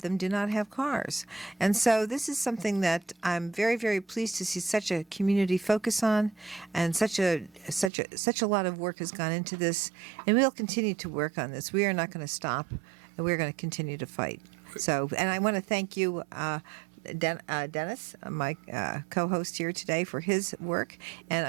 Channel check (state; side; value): drops out; left; at 7.9 s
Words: them, do not have cars. And so this is something that I'm very, very pleased to see such a community focus on, and such a lot of work has gone into this, and we'll continue to work on this. We are not going to stop, and we're going to continue to fight. So, and I want to thank you, Dennis, my co-host here today, for his work, and